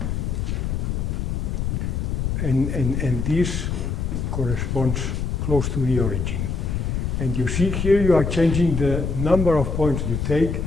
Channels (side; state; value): left; noise; rumble, 1 dB below the sound